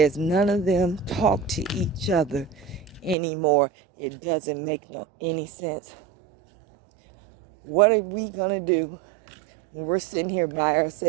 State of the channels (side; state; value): left; drops out; at 3.2 s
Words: none of them talk to each other anymore. It doesn't make any sense. What are we gonna do when we're sitting here by